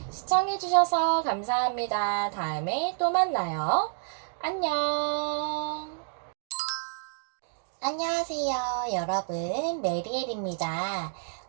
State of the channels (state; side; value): silent; left; digital silence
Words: 시청해주셔서 감사합니다. 다음에 또 만나요. 안녕. 안녕하세요, 여러분. 메리엘입니다.